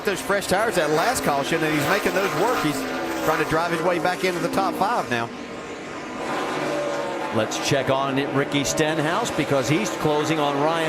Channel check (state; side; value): identical; both; correlation 1.00